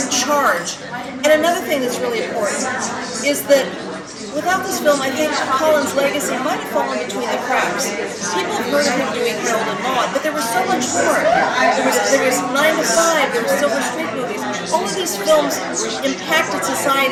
charge. And another thing that's really important is that without this film, I think Colin's legacy might have fallen between the cracks. People have heard of him doing Harold and Maude, but there was so much more. There was 9 to 5, there were Silver Street movies. All of these films impacted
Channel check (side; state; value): both; identical; correlation 1.00